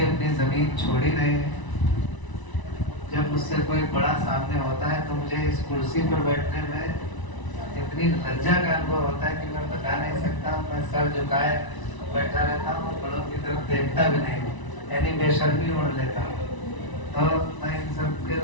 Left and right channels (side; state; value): right; late; 1.0 ms